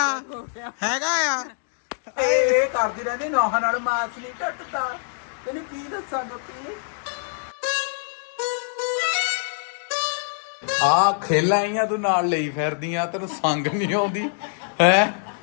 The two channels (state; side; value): silent; right; digital silence